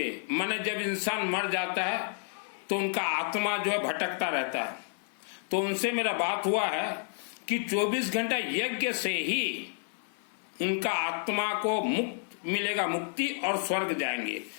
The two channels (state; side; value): silent; right; 57 dB below the other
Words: माने जब इंसान मर जाता है तो उनका आत्मा जो है भटकता रहता है। तो उनसे मेरा बात हुआ है कि 24 घंटा यज्ञ से ही उनका आत्मा को मुक्त मिलेगा, मुक्ति, और स्वर्ग जाएंगे।